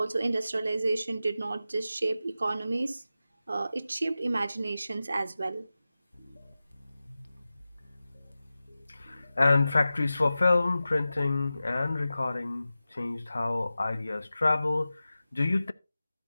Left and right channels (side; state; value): both; inverted; correlation -0.94